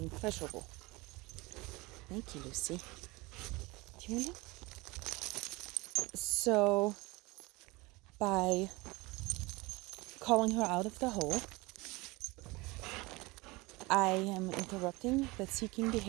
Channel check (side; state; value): left; quieter; 23.4 dB